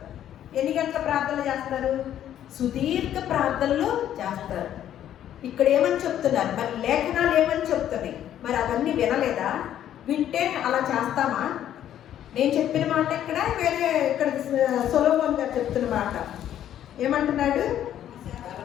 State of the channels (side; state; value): right; quieter; 11.0 dB